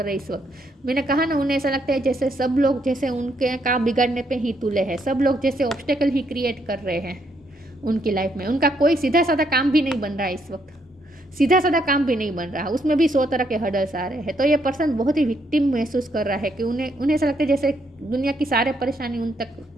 रहे हैं इस वक्त। मैंने कहा ना, उन्हें ऐसा लगता है जैसे सब लोग जैसे उनके काम बिगाड़ने पे ही तुले हैं, सब लोग जैसे ऑब्स्टेकल ही क्रिएट कर रहे हैं उनकी लाइफ में। उनका कोई सीधा साधा काम भी नहीं बन रहा है इस वक्त, सीधा साधा काम भी नहीं बन रहा, उसमें भी 100 तरह के हर्डल्स आ रहे हैं। तो ये पर्सन बहुत ही विक्टिम महसूस कर रहा है कि उन्हें ऐसा लगता है जैसे दुनिया की सारे परेशानी उन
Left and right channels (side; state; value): both; normal; correlation 0.74